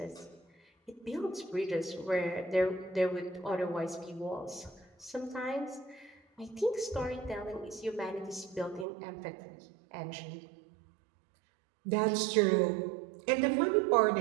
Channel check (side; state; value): left; drops out; at 8.8 s